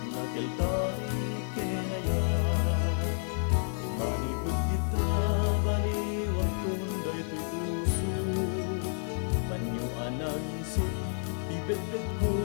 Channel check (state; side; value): silent; right; 58 dB below the other